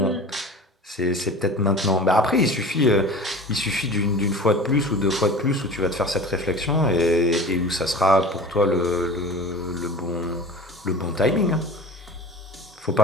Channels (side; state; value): both; normal; correlation 0.37